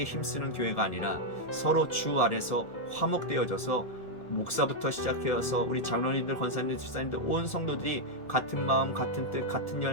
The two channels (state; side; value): late; right; 1.7 ms